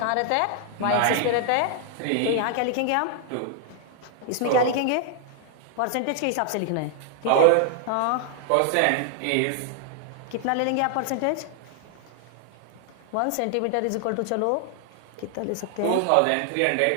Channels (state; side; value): different; both; correlation 0.00